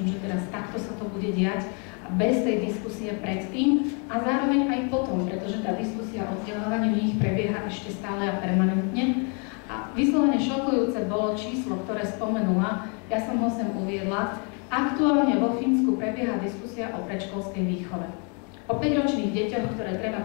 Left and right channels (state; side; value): quieter; right; 37.0 dB